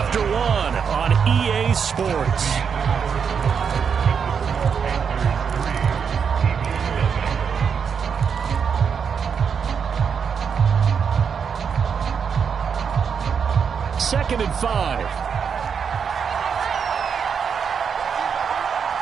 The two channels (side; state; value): left; quieter; 6.7 dB